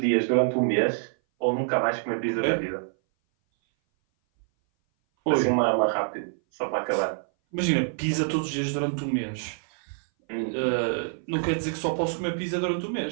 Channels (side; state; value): left; silent; 58 dB below the other